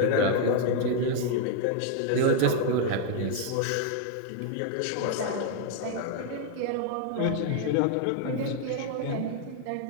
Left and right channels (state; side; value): different; both; correlation 0.00